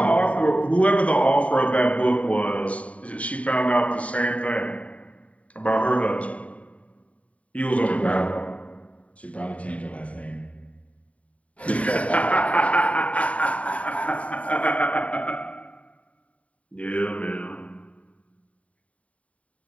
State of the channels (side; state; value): right; late; 0.066 ms